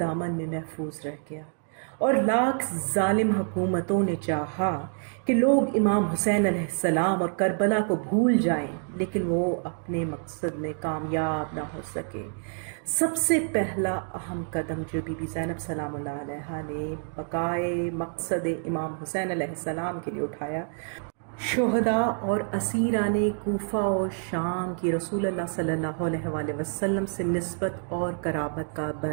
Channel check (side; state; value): left; silent; 56 dB below the other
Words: میں محفوظ رہ گیا، اور لاکھ ظالم حکومتوں نے چاہا کہ لوگ امام حسین علیہ السلام اور کربلا کو بھول جائیں، لیکن وہ اپنے مقصد میں کامیاب نہ ہو سکے۔ سب سے پہلا اہم قدم جو بی بی زینب سلام اللہ علیہا نے بقائے مقصد امام حسین علیہ السلام کے لیے اٹھایا، شہداء اور اسیران کوفہ و شام کی رسول اللہ صلی اللہ علیہ وآلہ وسلم سے نسبت اور قرابت کا